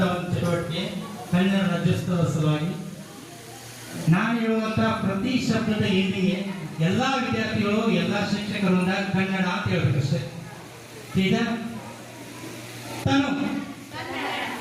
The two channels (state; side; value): identical; both; correlation 1.00